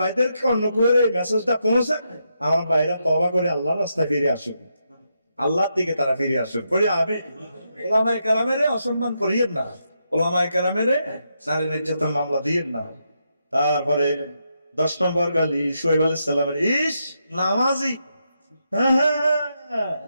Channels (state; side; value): inverted; both; correlation -0.82